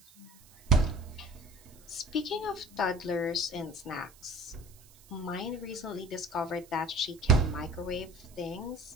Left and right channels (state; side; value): noise; right; hiss, 24 dB below the sound